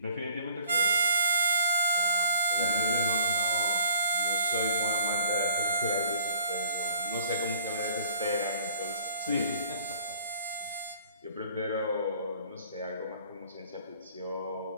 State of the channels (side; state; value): both; inverted; correlation -0.54